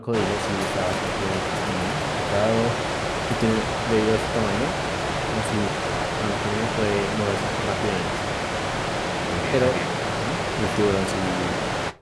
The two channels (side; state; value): both; identical; correlation 1.00